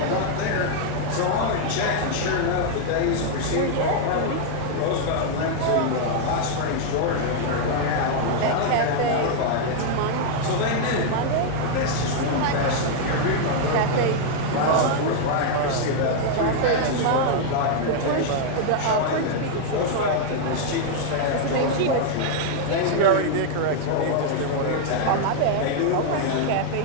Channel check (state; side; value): different; both; correlation -0.01